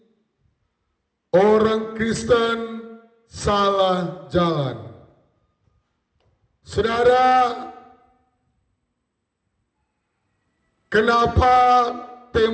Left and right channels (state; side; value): identical; both; correlation 1.00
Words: orang Kristen salah jalan. Saudara, kenapa